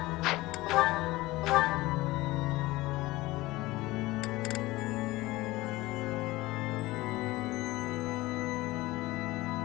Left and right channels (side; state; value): right; quieter; 19.4 dB